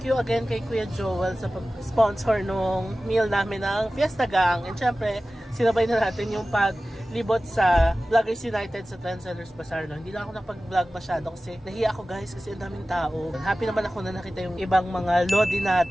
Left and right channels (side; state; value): both; normal; correlation 0.96